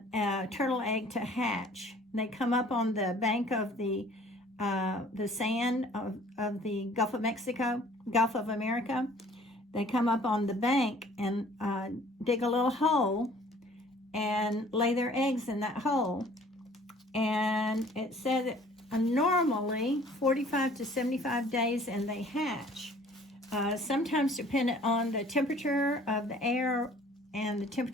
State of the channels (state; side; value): normal; both; correlation 0.53